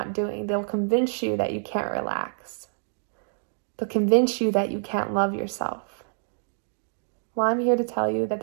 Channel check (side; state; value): left; silent; digital silence